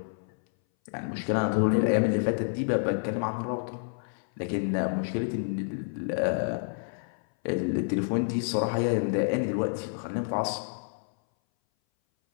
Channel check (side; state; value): right; silent; 59 dB below the other